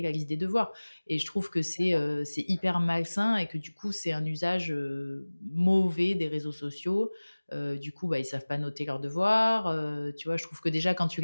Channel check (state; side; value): inverted; both; correlation -1.00